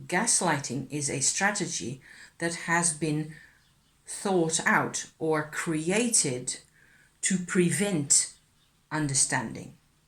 gaslighting is a strategy that has been thought out or created to prevent understanding.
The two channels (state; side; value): identical; both; correlation 1.00